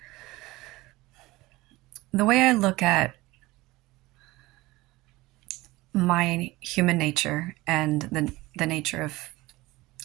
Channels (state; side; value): quieter; left; 20.0 dB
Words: The way I look at my human nature and the nature of